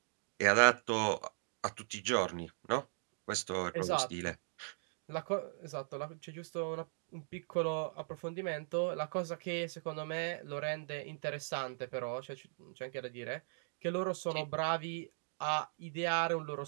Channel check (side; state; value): left; silent; digital silence